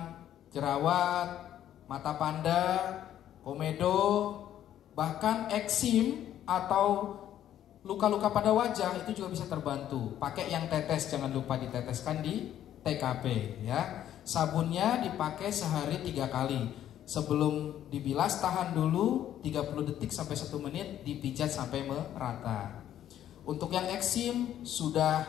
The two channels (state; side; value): quieter; right; 11.3 dB